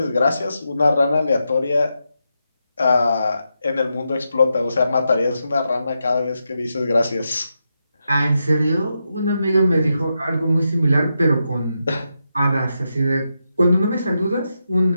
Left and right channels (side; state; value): both; inverted; correlation -0.86